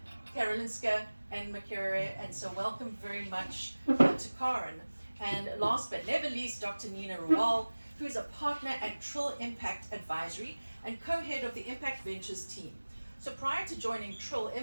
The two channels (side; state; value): both; inverted; correlation -1.00